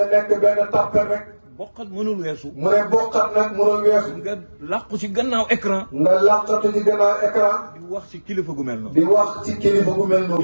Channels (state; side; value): inverted; both; correlation -1.00